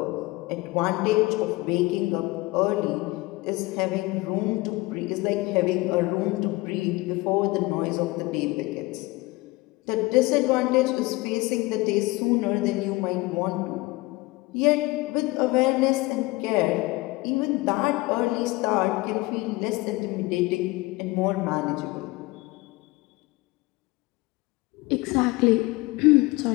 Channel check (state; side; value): quieter; right; 21.7 dB